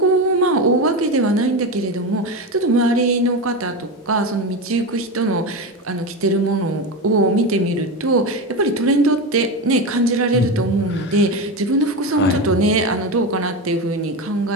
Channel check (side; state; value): both; normal; correlation 0.19